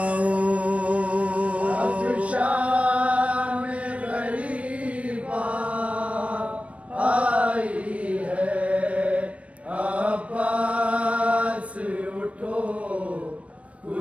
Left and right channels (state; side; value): late; left; 0.064 ms